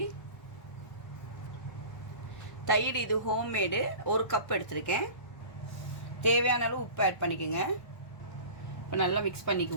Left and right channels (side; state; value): right; late; 1.4 ms